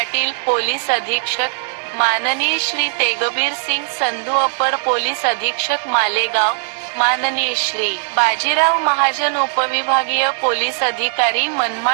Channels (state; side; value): silent; left; 67 dB below the other